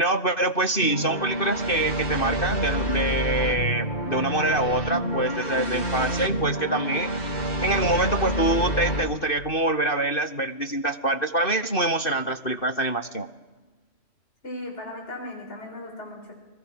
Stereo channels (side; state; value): right; late; 2.6 ms